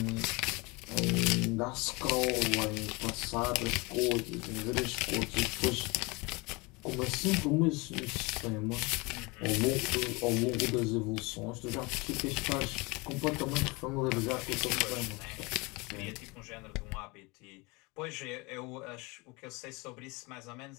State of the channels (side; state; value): right; quieter; 26.3 dB